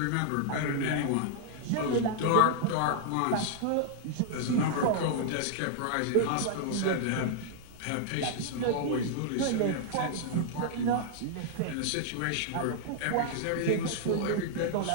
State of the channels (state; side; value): different; both; correlation -0.01